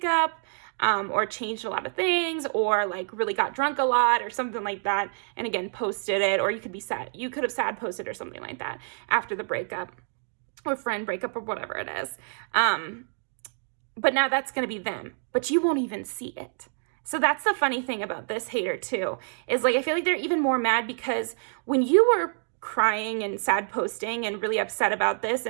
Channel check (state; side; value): silent; left; 57 dB below the other